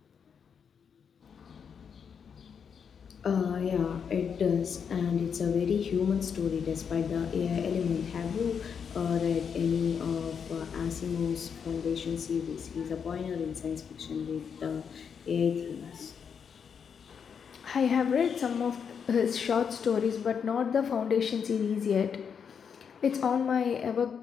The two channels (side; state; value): right; quieter; 6.9 dB